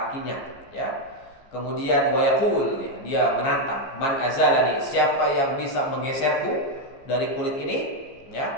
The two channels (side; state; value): right; late; 15 ms